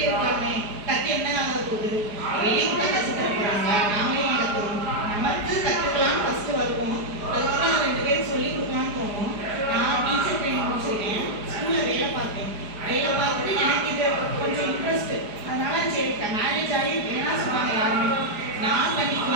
இருக்கலாமே, கற்று என்ன ஆக போகுது, வெளியே கூட கற்று தர போகிறாங்க, நாமளே ஏன் கற்றுக்கணும், நமக்கு கற்றுக்கலாம்னு ஃபஸ்ட்டு வருவோம், அதுக்கப்புறம் நான் 2 பேருக்கு சொல்லிக் கொடுக்கலான்னு தோணும். நான் டீச்சர் ட்ரைனிங் முடிச்சிருக்கேன், ஸ்கூலில் வேலை பார்த்தேன். வேலை பார்த்துட்டு எனக்கு இது கொஞ்சம் இன்ட்ரெஸ்ட்டு, அதனால சரி மேரேஜ் ஆகி வேணாம் சொன்னாங்க யாருமே.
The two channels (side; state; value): left; late; 4.9 ms